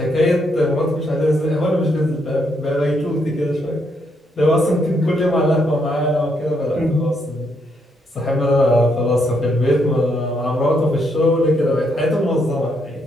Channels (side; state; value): both; normal; correlation 0.76